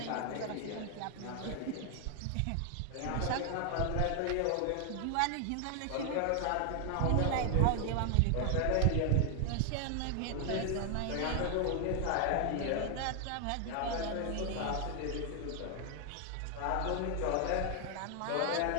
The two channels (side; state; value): both; different; correlation 0.00